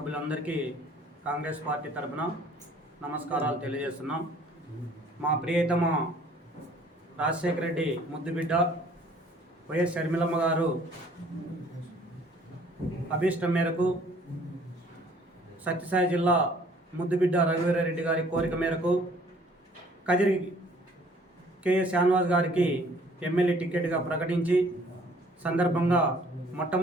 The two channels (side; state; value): both; normal; correlation 0.57